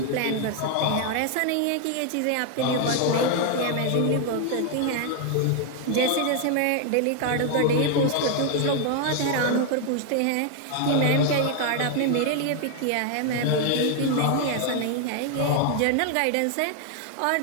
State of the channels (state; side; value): different; both; correlation 0.00